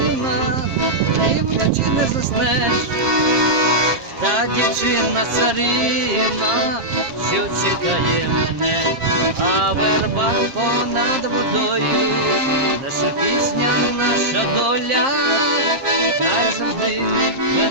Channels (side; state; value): left; late; 7.5 ms